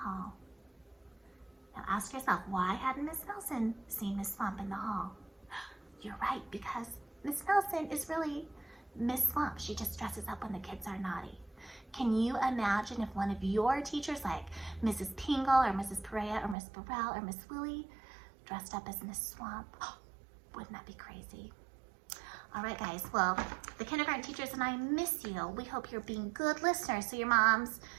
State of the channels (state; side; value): drops out; left; at 16.6 s